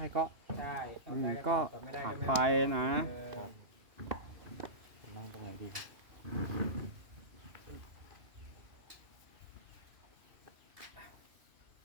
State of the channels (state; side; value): late; left; 2.7 ms